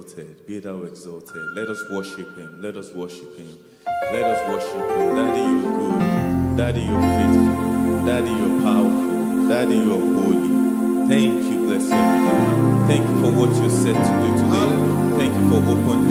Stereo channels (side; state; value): both; identical; correlation 1.00